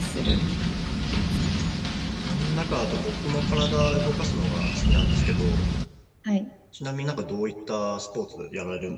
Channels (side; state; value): both; identical; correlation 1.00